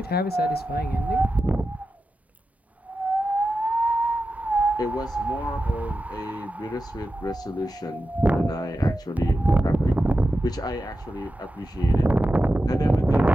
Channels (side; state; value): both; normal; correlation 0.91